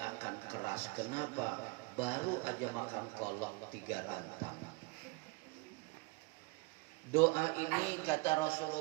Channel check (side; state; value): left; quieter; 25.1 dB